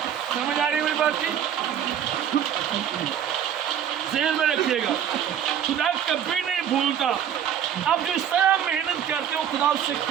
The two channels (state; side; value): quieter; left; 9.4 dB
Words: سمجھ آ رہی ہے میری بات کی ذہن میں رکھیے گا خدا کبھی نہیں بھولتا آپ جو اس طرح محنت کرتے ہو خدا اس سے